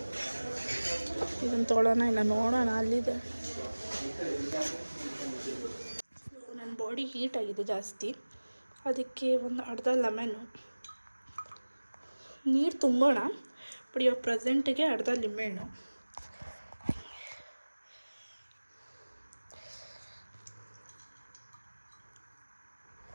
ಇದನ್ನು ತೊಗೊಳ್ಳೋಣ ಇಲ್ಲ ನೋಡೋಣ, ಅಲ್ಲಿದೆ. ನನ್ನ ಬಾಡಿ ಹೀಟ್ ಆಗಿದೆ ಜಾಸ್ತಿ, ಅದಕ್ಕೆ ಒಂದು ಅರ್ಧ ಲೆಮನ್ನು ನೀರು ತುಂಬೋಣ. ಬಟ್ ಇವಾಗ ಪ್ರೆಸೆಂಟಿಗೆ ಅರ್ಧ ಲಿಂಬೆಹಣ್ಣು,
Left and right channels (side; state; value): both; inverted; correlation -1.00